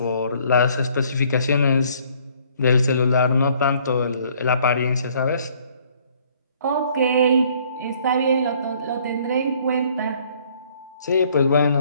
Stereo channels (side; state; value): both; inverted; correlation -0.61